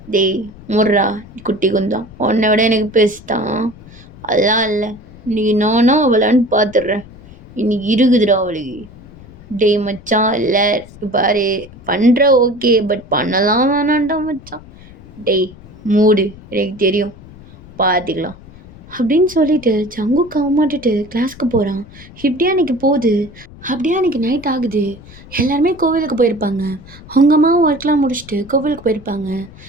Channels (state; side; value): noise; left; rumble, 20 dB below the sound